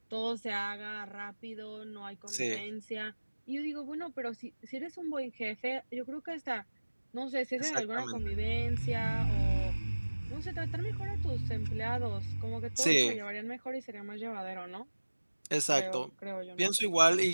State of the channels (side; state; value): both; inverted; correlation -1.00